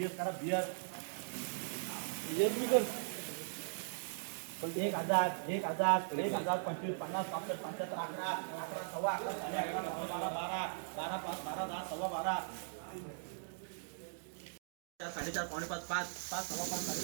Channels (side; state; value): left; silent; digital silence